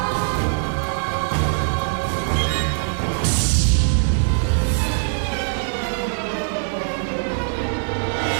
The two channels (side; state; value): left; silent; digital silence